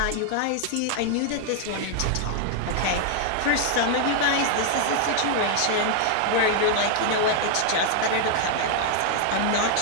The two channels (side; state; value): both; different; correlation 0.00